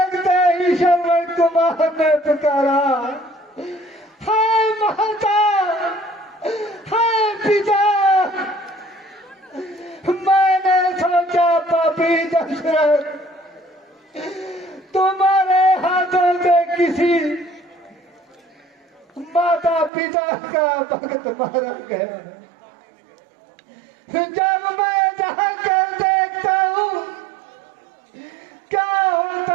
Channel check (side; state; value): left; drops out; at 19.9 s